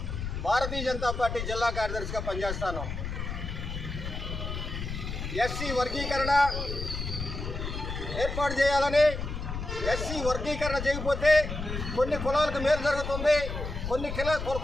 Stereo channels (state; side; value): noise; left; rumble, 5 dB below the sound